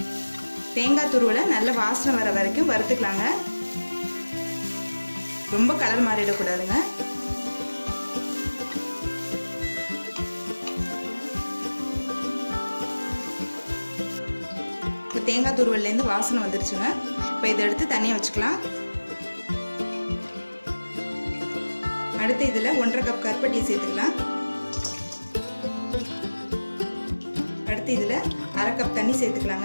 தேங்காய் துருவலை நல்ல வாசனை வர வரைக்கும் வறுத்துக்கலாங்க. ரொம்ப கலர் மாறிடக்கூடாதுங்க. இப்போ தேங்காய் துருவல்லேருந்து வாசனை வந்துருச்சுங்க. இப்போ இதை எடுத்து தனியாக வச்சுக்கலாம். அடுத்து இதில் 1.5 கப் கருப்பட்டி சேர்த்துக்கலாம். அடுத்து இதில் 1/2 கப் தண்ணி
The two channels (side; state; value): both; inverted; correlation -1.00